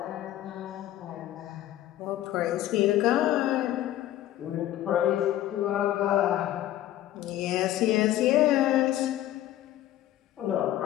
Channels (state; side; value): quieter; right; 13.5 dB